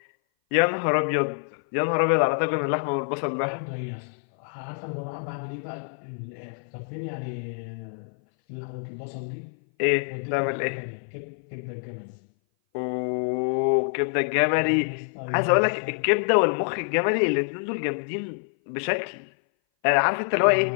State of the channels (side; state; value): right; silent; 58 dB below the other